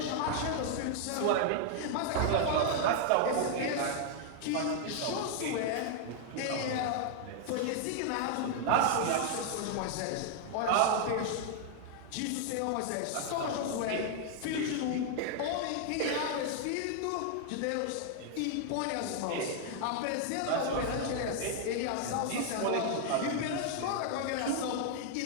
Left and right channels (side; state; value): both; different; correlation 0.00